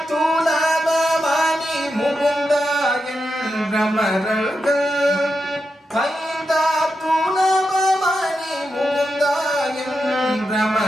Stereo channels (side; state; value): both; normal; correlation 0.87